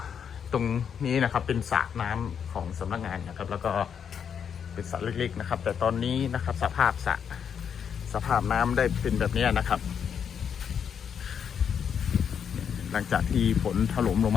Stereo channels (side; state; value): right; quieter; 7.6 dB